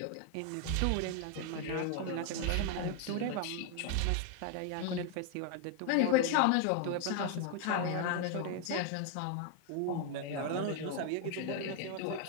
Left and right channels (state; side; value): different; both; correlation 0.00